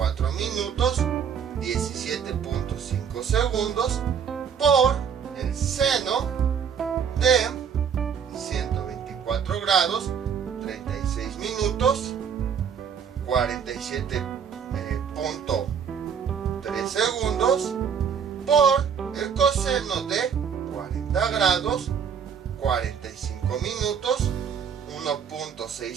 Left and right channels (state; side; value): quieter; left; 7.3 dB